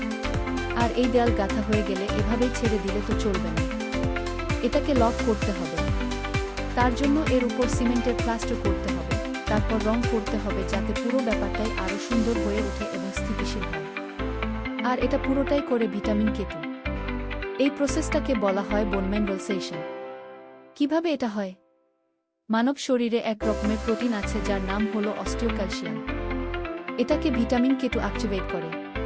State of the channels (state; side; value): identical; both; correlation 1.00